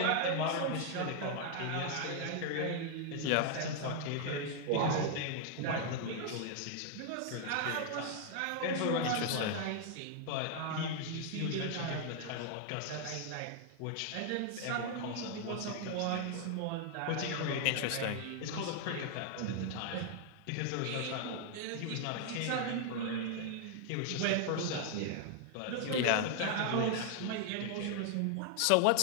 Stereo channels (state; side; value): different; both; correlation 0.00